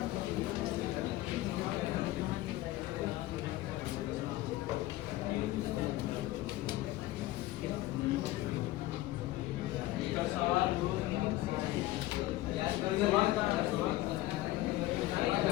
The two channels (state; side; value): quieter; right; 16.7 dB